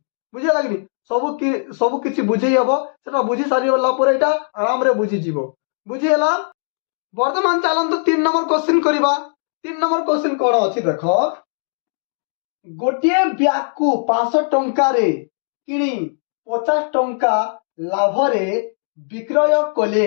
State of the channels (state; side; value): silent; right; digital silence